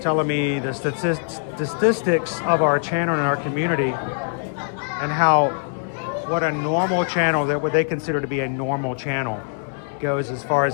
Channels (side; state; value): right; silent; 64 dB below the other